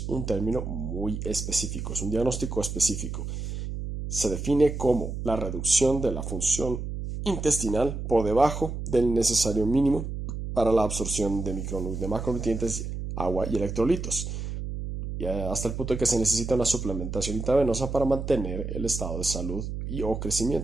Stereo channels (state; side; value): noise; right; hum, 5 dB below the sound